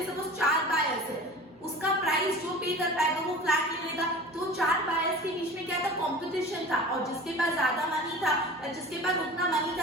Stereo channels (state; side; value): normal; both; correlation 0.38